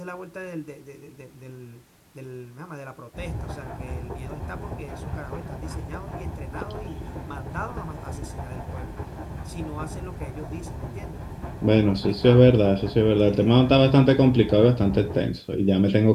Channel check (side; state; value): both; identical; correlation 1.00